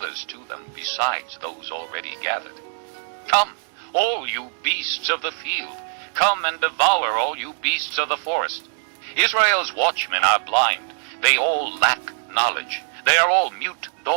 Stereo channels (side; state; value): left; silent; digital silence